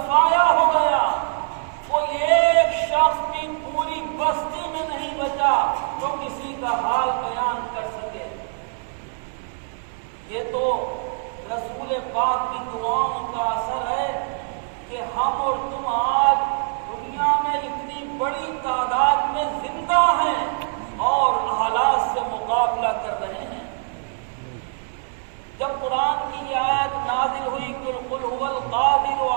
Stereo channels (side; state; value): left; silent; 63 dB below the other